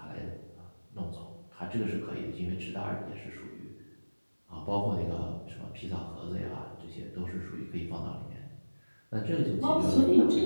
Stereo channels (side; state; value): both; inverted; correlation -1.00